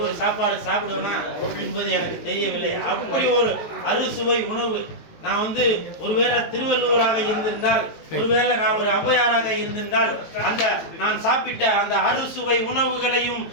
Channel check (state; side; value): late; right; 18 ms